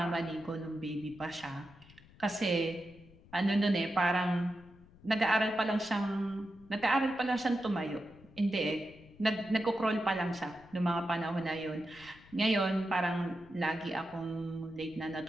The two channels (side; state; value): left; noise; rumble, 24 dB below the sound